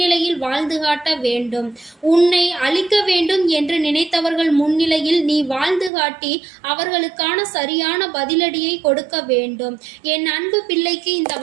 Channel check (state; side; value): drops out; left; at 5.9 s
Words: வாழ்ந்து காட்ட வேண்டும். உன்னை அழிக்க வேண்டும் என்று நினைத்தவர்கள் முன்னிலையில் நீ வாழ்ந்து காட்டி அவர்களுக்கான சரியான பதிலடியை கொடுக்க வேண்டும். என் அன்பு பிள்ளைக்கு இந்த